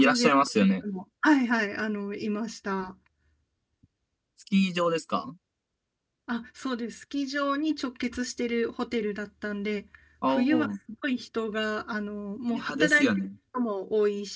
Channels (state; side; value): identical; both; correlation 1.00